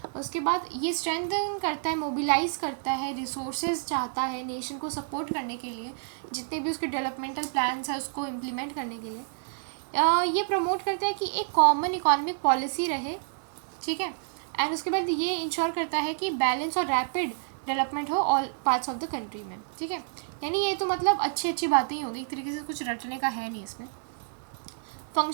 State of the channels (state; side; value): silent; left; 59 dB below the other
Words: उसके बाद ये स्ट्रेंथन करता है, मोबिलाइज करता है, रिसोर्सेज चाहता है नेशन को सपोर्ट करने के लिए, जितने भी उसके डेवलपमेंटल प्लान्स हैं उसको इम्प्लीमेंट करने के लिए। ये प्रमोट करता है कि एक कॉमन इकोनॉमिक पॉलिसी रहे। ठीक है। एंड उसके बाद ये इंश्योर करता है कि बैलेंस और रैपिड डेवलपमेंट हो all parts of the country में। ठीक है। यानी ये तो मतलब अच्छी अच्छी बातें ही होगी, एक तरीके से कुछ रटने का है नहीं इसमें।